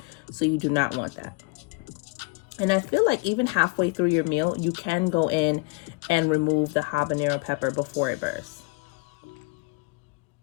So you do not want that. And I feel like even halfway through your meal, you can go in and remove the habanero pepper before it bursts.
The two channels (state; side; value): quieter; right; 26.1 dB